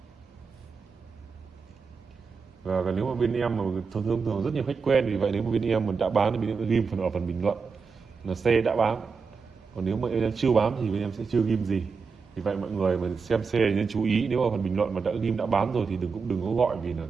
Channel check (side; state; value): left; quieter; 5.2 dB